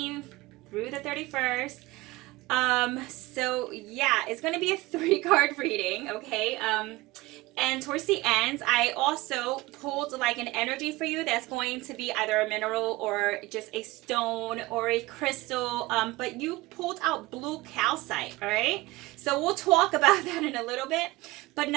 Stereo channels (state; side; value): quieter; left; 20.2 dB